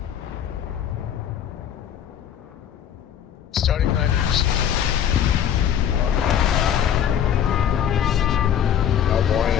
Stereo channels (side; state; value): right; quieter; 9.4 dB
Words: Starting line received. How boring